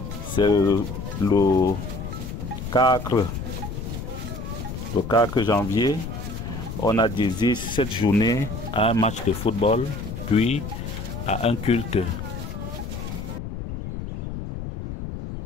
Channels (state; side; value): noise; left; rumble, 7 dB below the sound